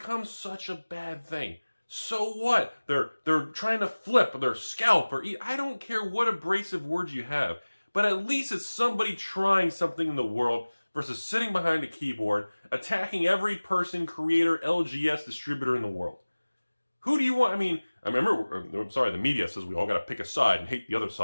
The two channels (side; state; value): both; inverted; correlation -1.00